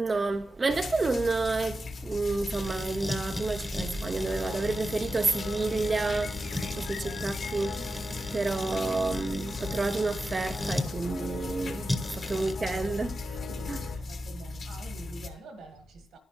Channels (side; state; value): both; normal; correlation 0.91